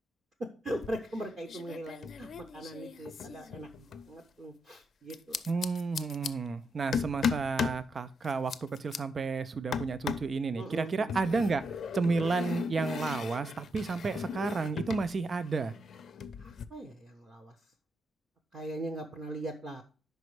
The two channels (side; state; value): both; normal; correlation 0.81